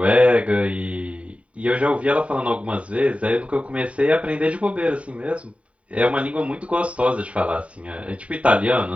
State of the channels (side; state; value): left; late; 0.065 ms